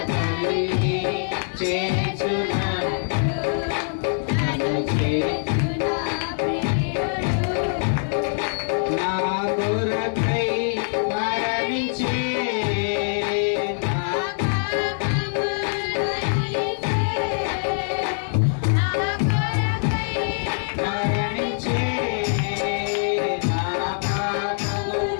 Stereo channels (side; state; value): right; silent; digital silence